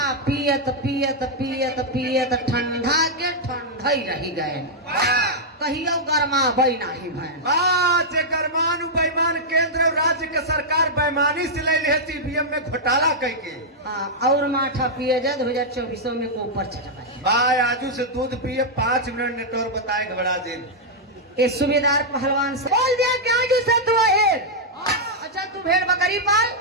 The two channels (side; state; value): both; normal; correlation -0.05